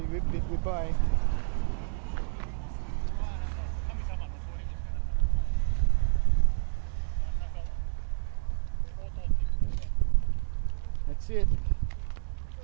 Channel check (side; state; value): left; silent; 58 dB below the other